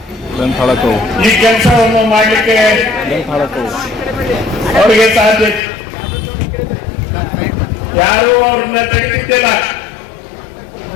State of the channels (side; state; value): right; drops out; at 5.6 s